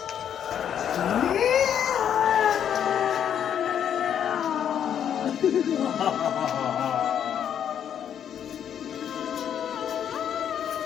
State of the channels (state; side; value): quieter; right; 9.1 dB